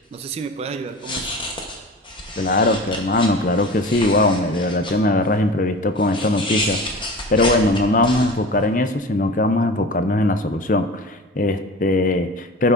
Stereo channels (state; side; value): normal; both; correlation 0.35